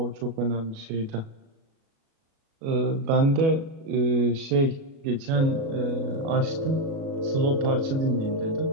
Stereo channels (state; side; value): late; left; 37 ms